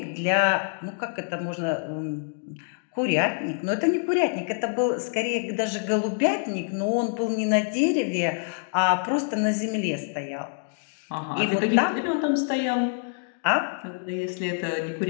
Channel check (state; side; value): silent; right; 61 dB below the other